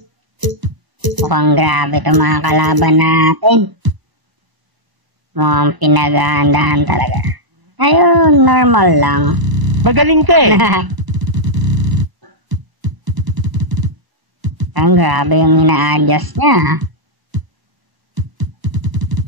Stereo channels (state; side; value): late; left; 1.0 ms